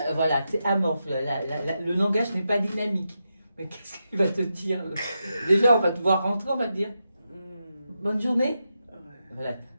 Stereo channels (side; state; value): both; inverted; correlation -0.87